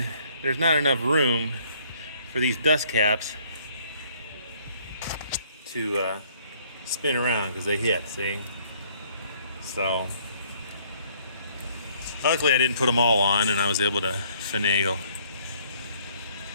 there's not enough room for these dust caps to spin around because they hit, see? So, luckily I didn't put them all on and I was able to finagle.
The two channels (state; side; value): inverted; both; correlation -0.62